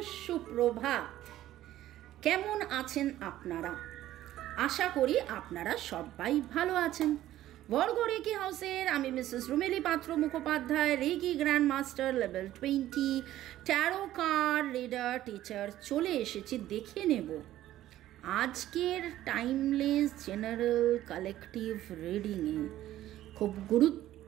সুপ্রভাত। কেমন আছেন আপনারা? আশা করি আপনারা সবাই ভালো আছেন। বর্গ রেকি হাউসের আমি Mrs Rumeli Patra Mukhopadhyay, reiki grand master level 20 tarot card reader teacher চলে এসেছি। দেখে নেব আজকের টাইমলেস জেনারেল কালেকটিভ রিডিংয়ে খুব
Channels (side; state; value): left; quieter; 13.7 dB